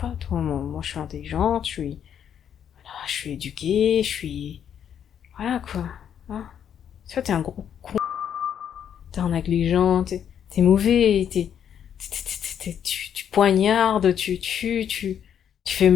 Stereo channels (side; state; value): right; quieter; 8.9 dB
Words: toi, moi, je suis intelligente, je suis éduquée, voilà, quoi. Hein. Toi, t'es un gros con. T'es un négligent, t'es mauvais, tu poignardes, tu tues, tu fais